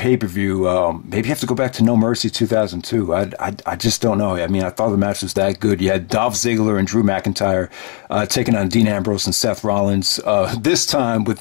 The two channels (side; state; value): right; quieter; 38.3 dB